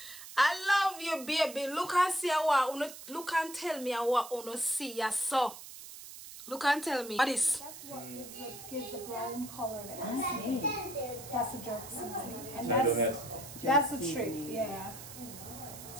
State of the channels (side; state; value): right; noise; hiss, 14 dB below the sound